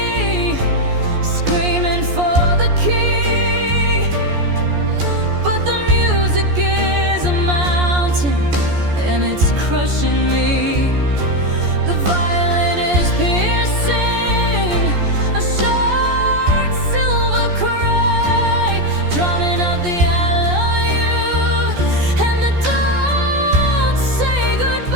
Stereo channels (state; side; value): late; left; 14 ms